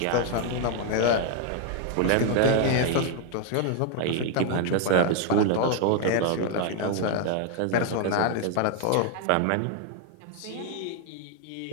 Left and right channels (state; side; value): different; both; correlation 0.00